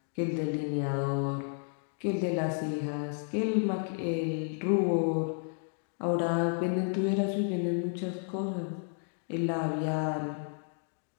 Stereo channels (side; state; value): right; silent; 56 dB below the other